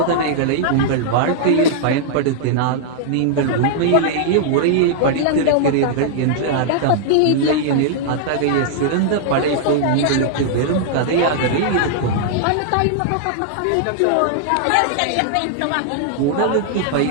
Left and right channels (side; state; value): both; different; correlation -0.01